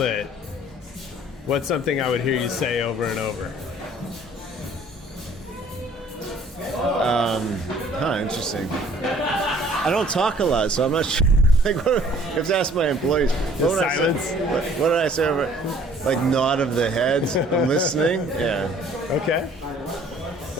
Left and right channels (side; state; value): both; normal; correlation 0.56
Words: what's something I would hear you say over and over? Interesting. I don't talk a lot, so I'm not sure. You have to ask my employees. What silence? What did I say over? Like nod of the head. I'm listening. Yeah. Okay.